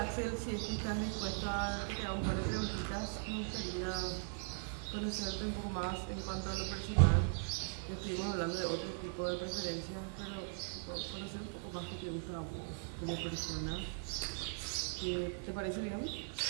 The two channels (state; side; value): silent; left; digital silence